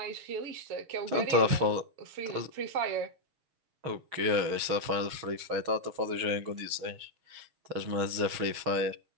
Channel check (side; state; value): left; late; 6.3 ms